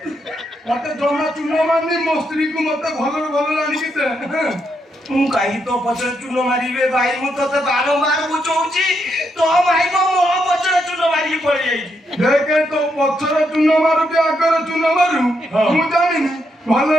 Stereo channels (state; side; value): normal; both; correlation 0.80